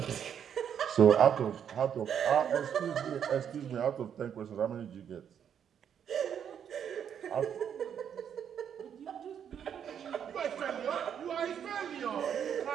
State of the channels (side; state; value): left; quieter; 8.5 dB